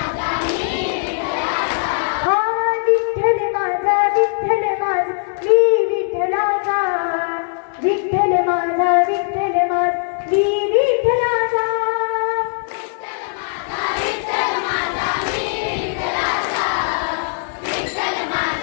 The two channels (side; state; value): right; silent; digital silence